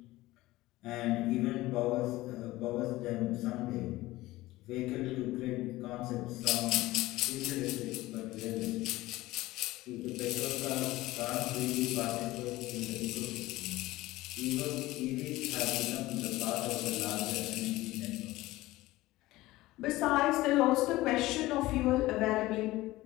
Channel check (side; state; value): right; quieter; 18.1 dB